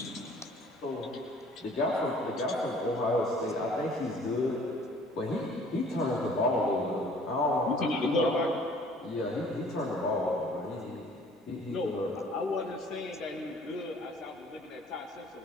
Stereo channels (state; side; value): normal; both; correlation 0.53